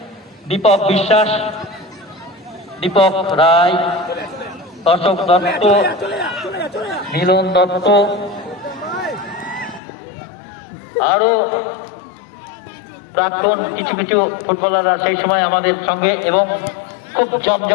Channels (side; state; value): right; drops out; at 9.8 s